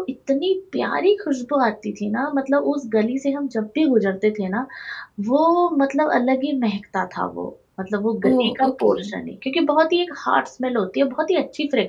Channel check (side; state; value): both; identical; correlation 1.00